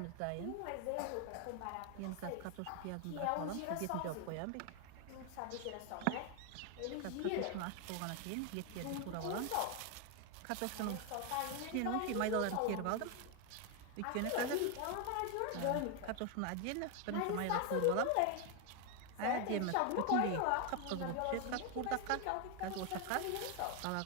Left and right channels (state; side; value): different; both; correlation 0.01